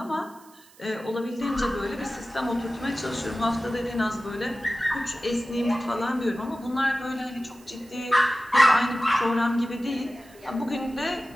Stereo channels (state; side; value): noise; right; hiss, 26 dB below the sound